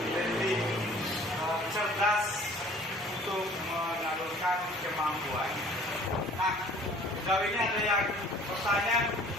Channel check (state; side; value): normal; both; correlation 0.52